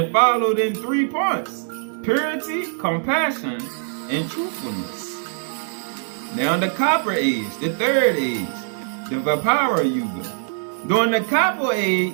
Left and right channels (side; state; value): left; silent; 64 dB below the other